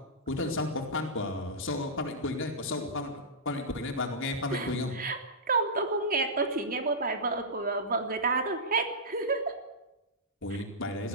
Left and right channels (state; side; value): normal; both; correlation -0.14